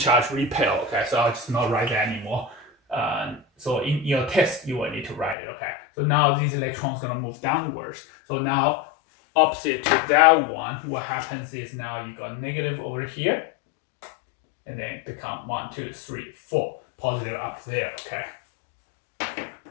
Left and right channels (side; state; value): right; drops out; at 5.4 s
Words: repel. Okay, so I'll just not write that anymore. So in your test, you will need to write it. Okay, so now these electrons gonna move downwards. So now opposite to that one, what happens is now you got negative over here, and then become 1, 2, 3, 4 positive up there. Okay.